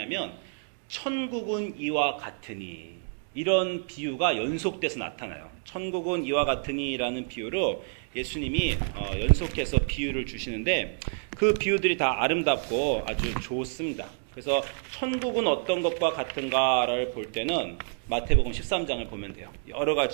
천국은 이와 같으니 이런 비유가 연속돼서 나타나요. 천국은 이와 같으니라는 비유로 예수님이 연속해서 비유를 주시는데 그 비유들이 다 아름답고 아주 좋습니다. 그래서 천국은 어떤 것과 같은가를 볼 때는 마태복음 13장을 보면 돼요. 여러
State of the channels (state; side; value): silent; left; digital silence